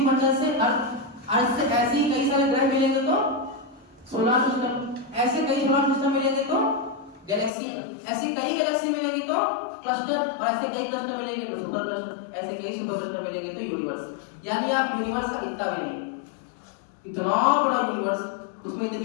से अर्थ से ऐसे ही कई सारे ग्रह मिलेंगे तो सोलर सिस्टम, ऐसे कई सोलर सिस्टम मिलेंगे तो गैलेक्सी, ऐसी कई गैलेक्सी मिलेंगी तो क्लस्टर, और ऐसे कई क्लस्टर मिलेंगे तो सुपर क्लस्टर, ऐसे कई सुपर क्लस्टर मिलेंगे तो यूनिवर्स। यानी आप यूनिवर्स का इतना भी नहीं, इतना बड़ा यूनिवर्स, उसमें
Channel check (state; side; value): drops out; right; at 7.5 s